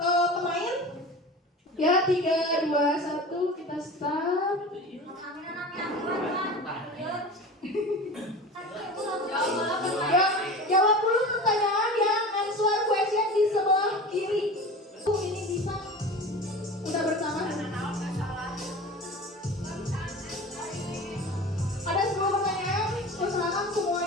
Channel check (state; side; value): normal; both; correlation 0.34